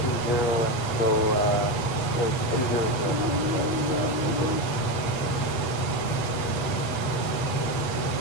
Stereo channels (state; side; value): late; right; 8.0 ms